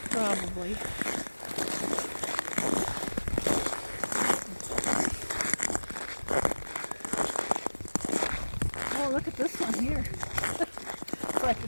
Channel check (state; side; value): inverted; both; correlation -1.00